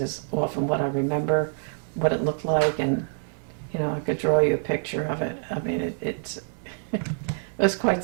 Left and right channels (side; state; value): left; silent; 61 dB below the other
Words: is often what I remember, what it looked like, and, you know, I could draw you a picture of it. I mean, it was